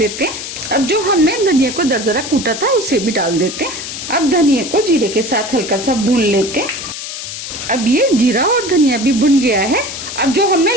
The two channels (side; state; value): left; noise; hiss, 8 dB below the sound